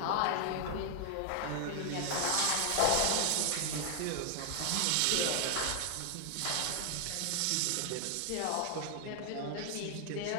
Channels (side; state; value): both; different; correlation 0.00